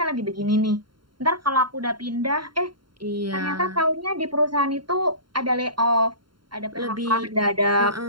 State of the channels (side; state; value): left; late; 0.72 ms